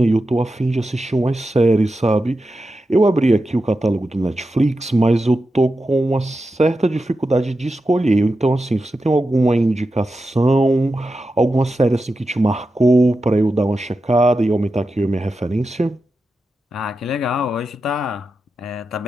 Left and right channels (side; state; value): both; normal; correlation 0.90